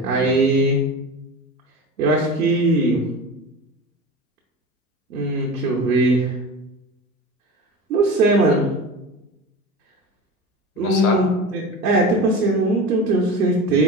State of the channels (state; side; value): normal; both; correlation 0.31